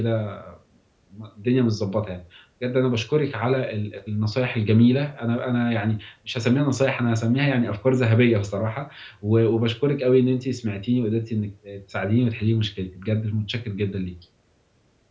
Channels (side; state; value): both; identical; correlation 1.00